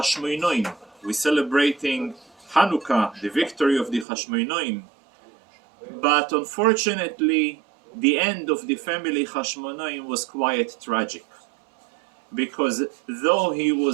We're celebrating Hanukkah, the victory of the Hashmonaim. But unfortunately, the end of the family Hashmonaim was quite tragic. Because though he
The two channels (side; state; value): left; drops out; at 4.0 s